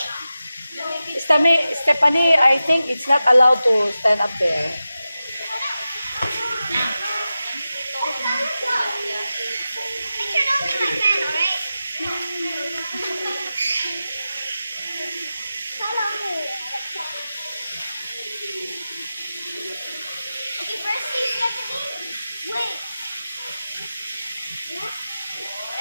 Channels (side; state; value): both; inverted; correlation -0.93